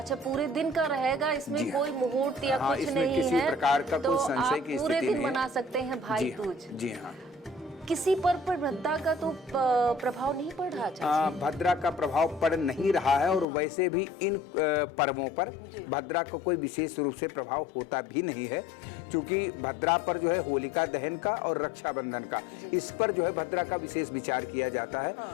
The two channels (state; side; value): drops out; right; at 13.5 s